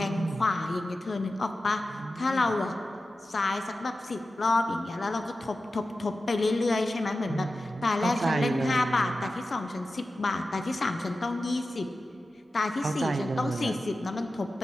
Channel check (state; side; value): normal; both; correlation 0.93